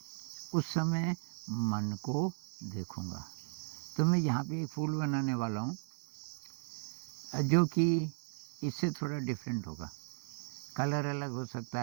उस समय मन को देखूँगा। तो मैं यहाँ पे एक फूल बनाने वाला हूँ जो कि इससे थोड़ा डिफरेंट होगा। कलर अलग हो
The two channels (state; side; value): silent; left; 54 dB below the other